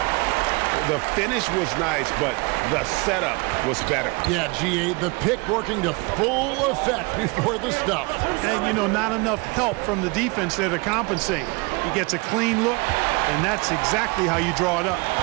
The finish was nice, but the setup was better. Yeah, G8, the pick working to full effect before the stuff. And, you know, not enough help from the defense there to compensate. He gets a clean look, and that's exactly how you draw it up.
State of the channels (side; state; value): left; quieter; 27.8 dB